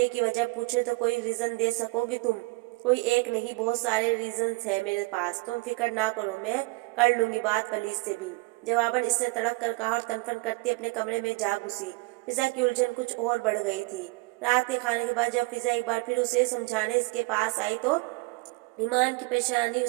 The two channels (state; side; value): quieter; left; 25.2 dB